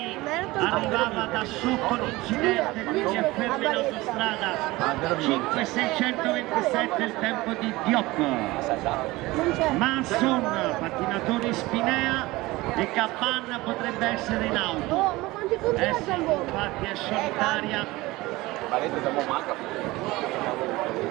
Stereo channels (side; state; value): left; quieter; 20.2 dB